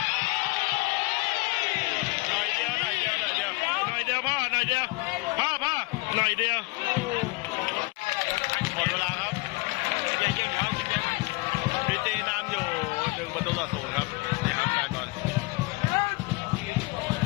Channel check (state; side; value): quieter; right; 25.0 dB